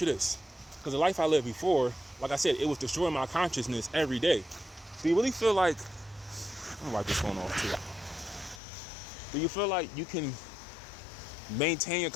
you this. Because the life I lived before, like I said, it was destroying my consciousness every day. Do you really feel like, I'm gonna wipe this phone off too. Do you feel like you can maintain your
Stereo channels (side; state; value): right; drops out; at 8.6 s